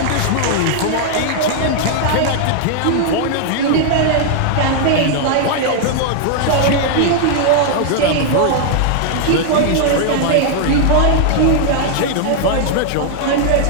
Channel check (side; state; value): both; different; correlation 0.00